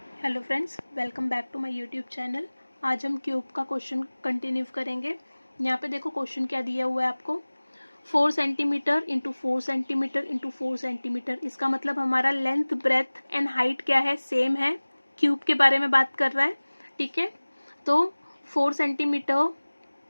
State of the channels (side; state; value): both; inverted; correlation -1.00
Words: Hello friends, welcome back to my YouTube channel. आज हम cube का क्वेश्चन कंटिन्यू करेंगे। यहाँ पे देखो क्वेश्चन क्या दिया हुआ है आपको, 4 centimetre into 4 centimetre into 4 centimetre. इसका मतलब हमारा लेंथ, ब्रेथ एंड हाइट क्या है, सेम है। क्यूब के बारे में बात कर रहा है, ठीक है। तो 4 सेंटीमीटर